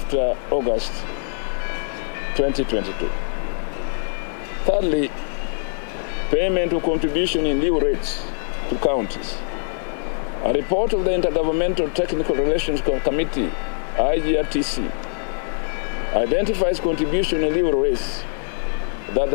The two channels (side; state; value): right; silent; digital silence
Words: August 2022. Thirdly, payment of contribution in lieu rates to counties. A report of the Intergovernmental Technical Relations Committee, IGRTC, identifies contribution in lieu rates that